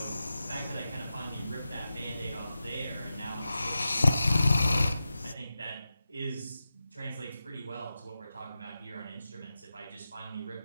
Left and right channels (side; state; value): both; inverted; correlation -0.92